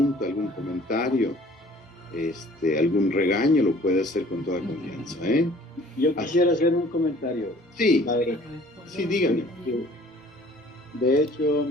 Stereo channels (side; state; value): both; normal; correlation 0.52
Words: algún comentario, algún regaño, lo puede hacer con toda confianza, Yo quisiera hacer un comentario. Sí, padre. Sí, dígame. De hecho,